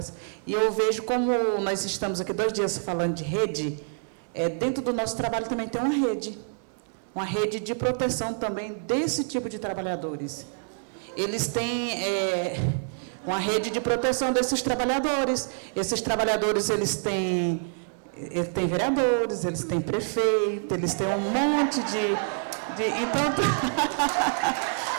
e eu vejo como nós estamos aqui 2 dias falando de rede, dentro do nosso trabalho também tem uma rede de proteção também desse tipo de trabalhadores. Eles têm uma rede de proteção desses trabalhadores. Esses trabalhadores, eles têm vereadores, eles têm prefeito, eles têm um monte de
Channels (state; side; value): silent; left; 60 dB below the other